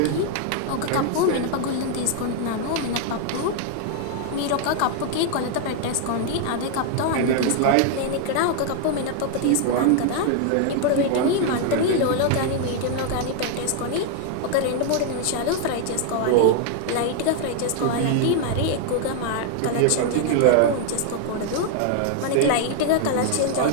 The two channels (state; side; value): different; both; correlation 0.00